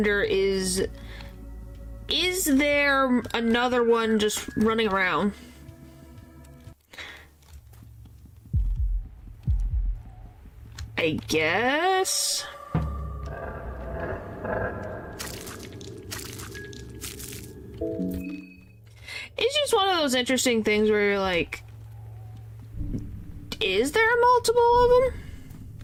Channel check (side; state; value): both; identical; correlation 1.00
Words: is there another one just running around? I guess? It's just one of those interesting things where you're like, is there multiple of them?